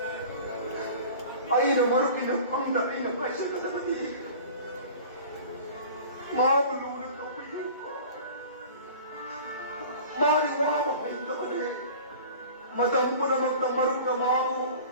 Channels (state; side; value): inverted; both; correlation -0.41